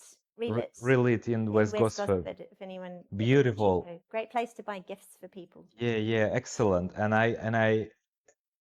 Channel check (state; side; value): identical; both; correlation 1.00